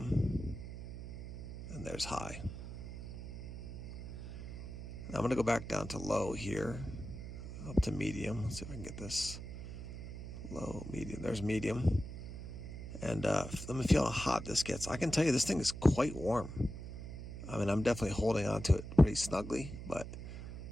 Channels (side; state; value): right; noise; hum, 9 dB below the sound